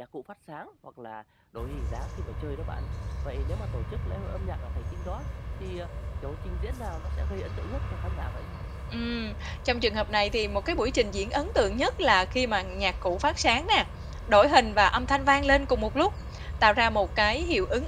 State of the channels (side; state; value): both; identical; correlation 1.00